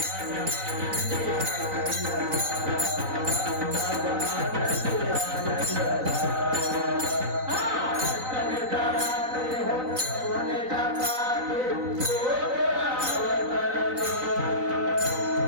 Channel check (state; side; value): late; left; 3.9 ms